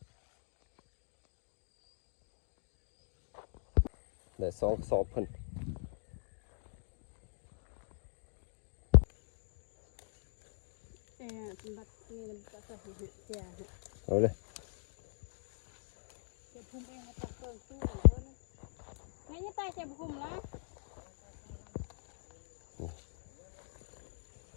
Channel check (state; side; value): silent; right; digital silence